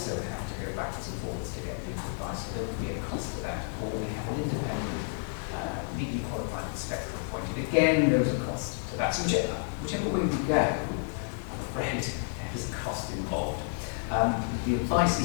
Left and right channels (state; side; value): silent; right; 57 dB below the other